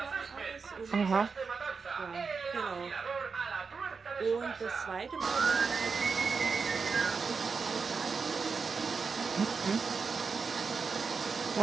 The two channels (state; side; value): quieter; left; 5.1 dB